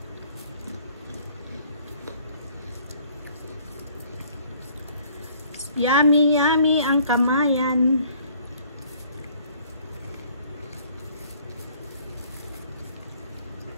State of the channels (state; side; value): inverted; both; correlation -0.58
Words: Yummy, yummy ang kamayan.